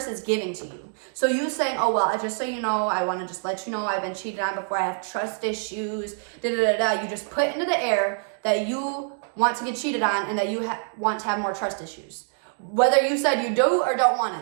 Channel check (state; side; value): silent; left; 59 dB below the other